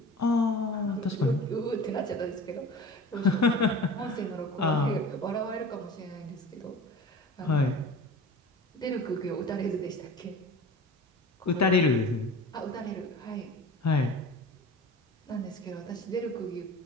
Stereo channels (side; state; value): both; normal; correlation 0.38